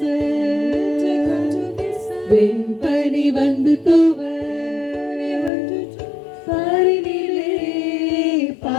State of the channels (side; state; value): right; drops out; at 5.5 s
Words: வெண்பனி வந்து தூவ பாரினிலே